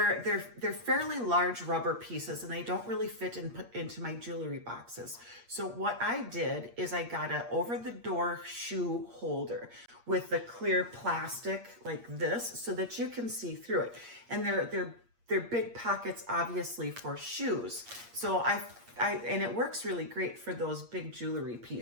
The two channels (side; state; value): left; late; 8.5 ms